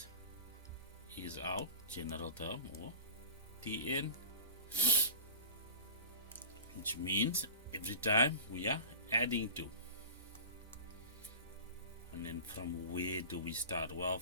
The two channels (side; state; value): both; inverted; correlation -0.36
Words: is our general term, or Tn, which means every time we are adding 2. And then from where do we start? Well,